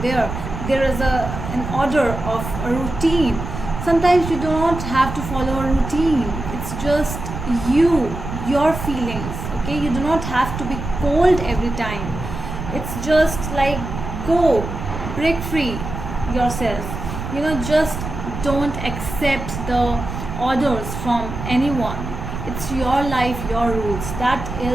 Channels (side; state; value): right; noise; rumble, 7 dB below the sound